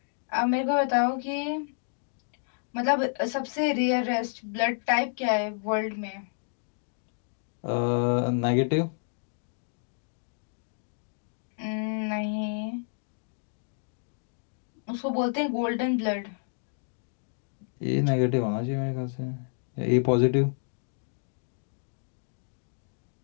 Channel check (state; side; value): silent; right; digital silence